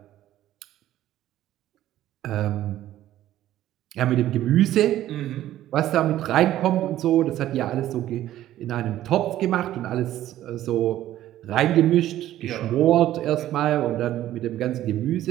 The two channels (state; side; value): quieter; left; 13.3 dB